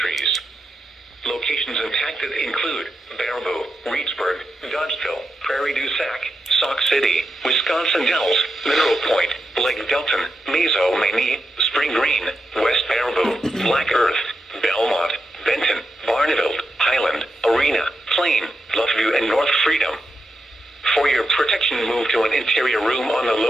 Locations impacted include Baraboo, Reedsburg, Dodgeville, Prairie du Sac, Sauk City, Wisconsin Dells, Mineral Point, Lake Delton, Mazo, Maine, Spring Green, West Baraboo, Black Earth, Belmont, Benton, Barneveld, Highland, Arena, Plain, Bluffview, and North Freedom. For your protection, move to an interior room on the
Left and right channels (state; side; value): normal; both; correlation 0.87